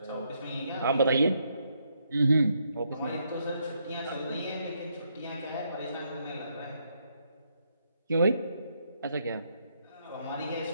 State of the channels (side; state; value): both; inverted; correlation -0.76